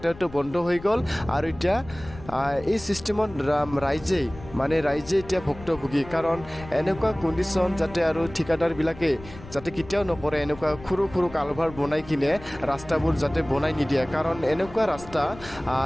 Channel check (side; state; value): left; noise; rumble, 17 dB below the sound